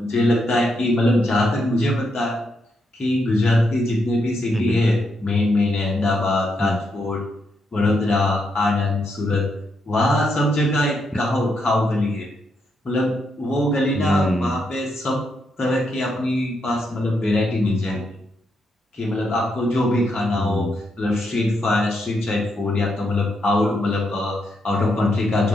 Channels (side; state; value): both; normal; correlation 0.80